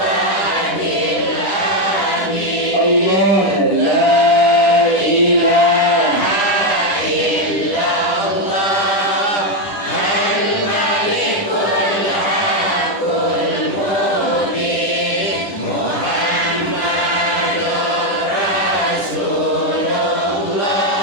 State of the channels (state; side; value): late; right; 10 ms